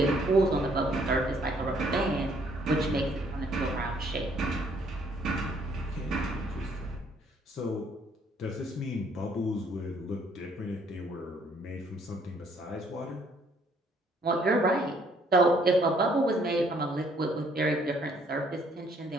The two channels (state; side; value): normal; both; correlation 0.64